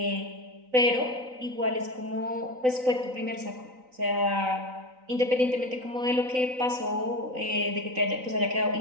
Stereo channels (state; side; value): late; left; 3.9 ms